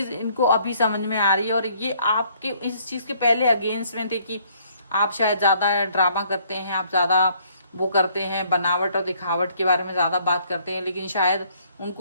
इनको अभी समझ में आ रही है, और ये आपके इस चीज के पहले अगेंस्ट में थे कि आप शायद ज्यादा ड्रामा करते हैं, आप ज्यादा वो करते हैं, बनावट और दिखावट के बारे में ज्यादा बात करते हैं, लेकिन शायद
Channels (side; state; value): both; inverted; correlation -0.64